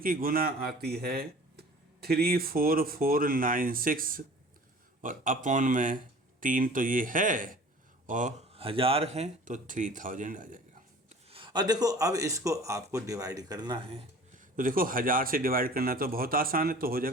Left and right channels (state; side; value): normal; both; correlation 0.45